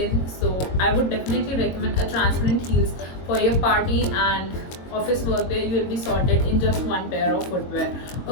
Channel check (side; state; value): right; late; 22 ms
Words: So I would definitely recommend a transparent heels for your party and office work where you will be sorted in just one pair of footwear.